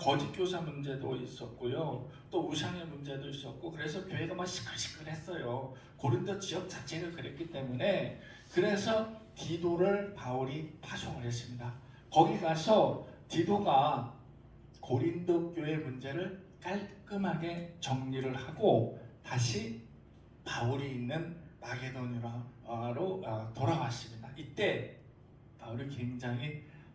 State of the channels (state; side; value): identical; both; correlation 1.00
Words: 교사 문제도 있었고요, 또 우상의 문제도 있었고, 그래서 교회가 막 시끌시끌했어요. 고린도 지역 자체가 그랬기 때문에. 그래서 디도를 바울이 파송을 했습니다. 거기 가서 디도가 고린도 교회 문제를 깔끔하게 정리를 하고 다시 바울이 있는 마게도니아로 돌아왔습니다. 이때 바울이 굉장히